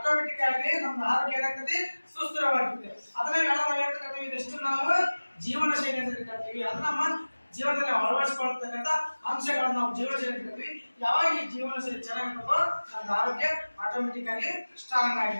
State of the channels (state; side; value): inverted; both; correlation -1.00